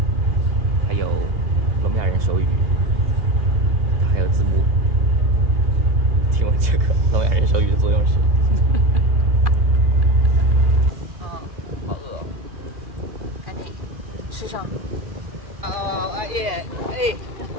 还有聋哑人手语，它还有字幕。听闻这个聋哑人手语的作用是？好饿，赶紧吃上。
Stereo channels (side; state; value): left; late; 2.4 ms